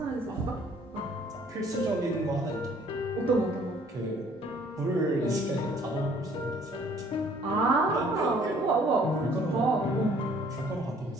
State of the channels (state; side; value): normal; both; correlation 0.58